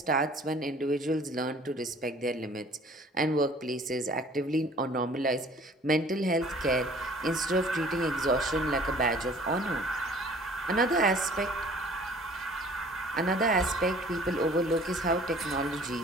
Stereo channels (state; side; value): normal; both; correlation 0.52